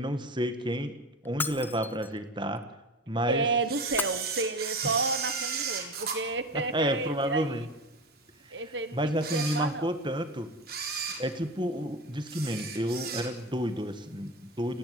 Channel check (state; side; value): normal; both; correlation 0.28